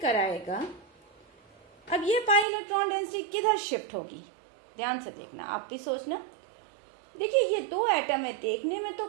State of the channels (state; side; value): drops out; left; at 2.5 s